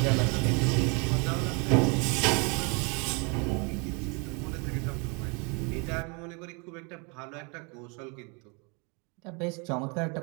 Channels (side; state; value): left; quieter; 32.3 dB